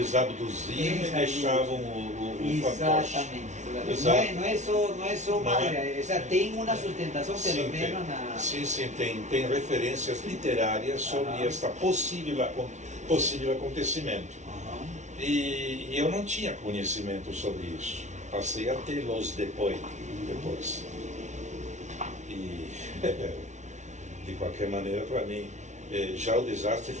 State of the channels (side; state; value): left; late; 0.34 ms